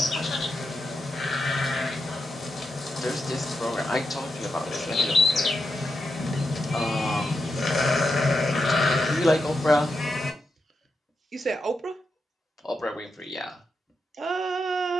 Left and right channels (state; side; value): normal; both; correlation 0.86